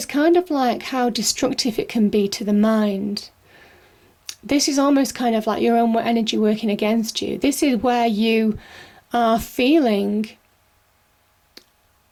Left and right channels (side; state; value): both; identical; correlation 1.00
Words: kind of like how destructive it can be to the mind. This is almost kind of like your own energy working against you. This is where you are feeling